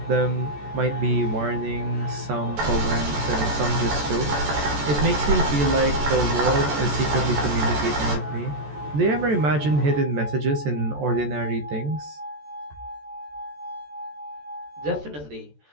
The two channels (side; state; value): left; late; 14 ms